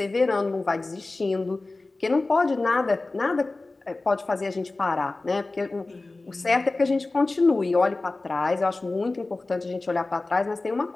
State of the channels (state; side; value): quieter; right; 3.2 dB